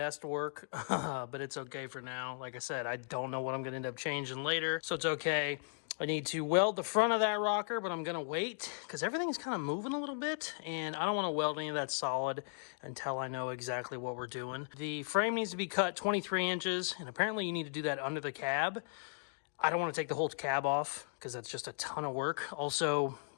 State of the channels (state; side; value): silent; right; digital silence